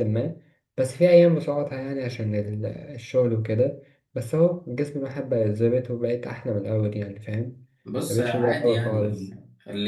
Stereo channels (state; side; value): identical; both; correlation 1.00